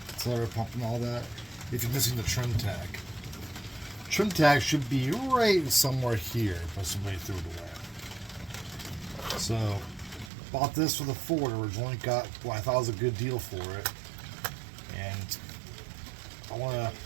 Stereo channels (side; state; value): left; drops out; at 10.3 s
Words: accelerator pump and all that, if you're missing the trim tag. Trim tag should be right somewhere here, but somebody threw it away. So, bought this for the Ford. Originally got what I thought was a good deal for it, and I want to